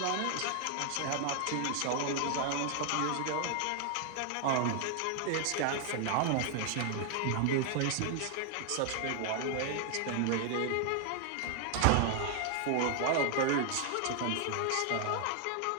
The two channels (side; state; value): both; different; correlation 0.00